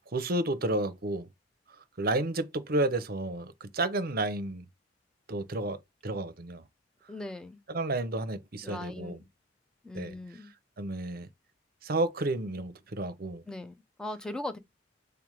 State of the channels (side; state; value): both; normal; correlation 0.19